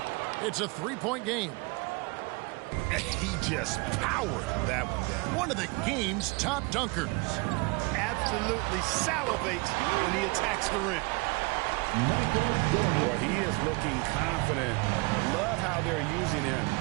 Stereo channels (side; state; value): left; quieter; 26.9 dB